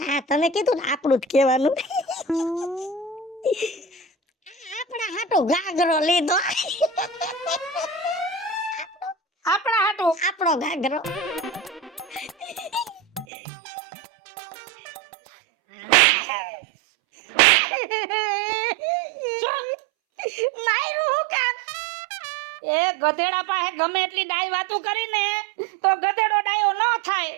હા તમે કીધું ને આપણું જ કહેવાનું. આપણા હાટુ ગાગરો લીધો. આપણા હાટું. આપણો ગાગરો. માયરું હું કામ? એ ગધેડા પાસે ગમે એટલી ડાય વાતું કરીને તો ગધેડો ડાયો ન થાય.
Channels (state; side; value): drops out; left; at 13.2 s